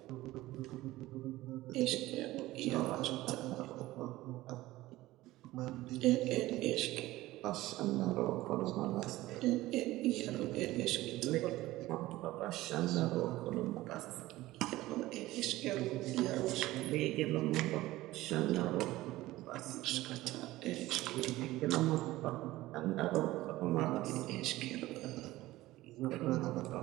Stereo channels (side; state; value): left; quieter; 17.3 dB